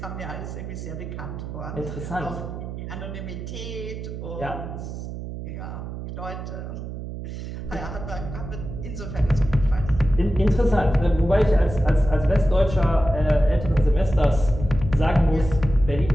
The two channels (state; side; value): noise; right; hum, 8 dB below the sound